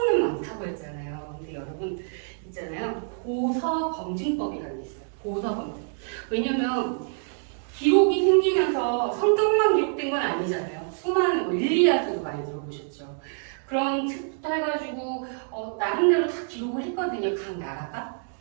많다고 했잖아요. 근데 여러분 있잖아요. 보서 검증법이라는 게 있어요. 보서 검증. 왜냐면 기록이 생기면서 성경만 기록된 건 아니잖아요. 수많은 일리아드도 많이 들어보셨죠. 그런 책부터 해가지고 나름대로 다 기록을 했거든요. 각 나라가.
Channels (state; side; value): silent; left; 61 dB below the other